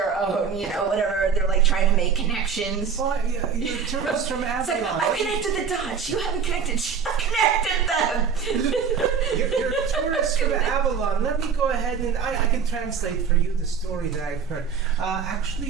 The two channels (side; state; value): left; quieter; 6.5 dB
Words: own, whatever. They're like trying to make connections. Well, you're tourists from It's like, Avalon. I've connected the dots. You haven't connected. I've connected them. You're tourists from Avalon. Let me go ahead and I can translate for you the story that I've heard.